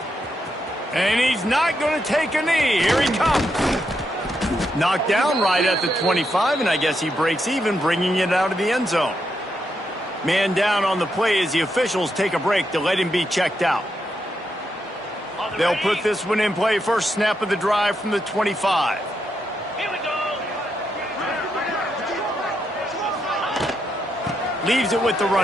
And he's not going to take a knee. Here he comes. Knocked down right at the 25, and I guess he breaks even, bringing it out of the end zone. Man down on the play as the officials take a break to let him be checked out. They'll put this one in play. First snap of the drive from the 25. Here we go. Leaves it with the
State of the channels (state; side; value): normal; both; correlation 0.81